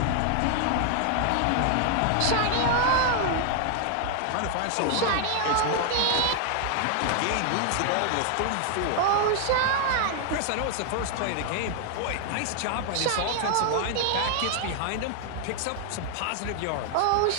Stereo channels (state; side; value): different; both; correlation 0.00